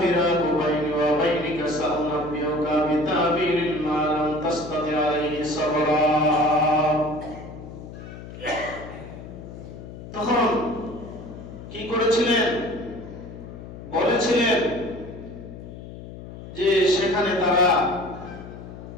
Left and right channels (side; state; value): left; noise; hum, 13 dB below the sound